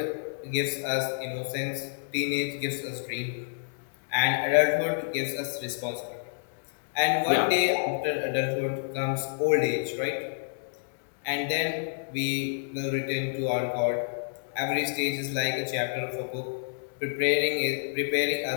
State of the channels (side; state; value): right; silent; digital silence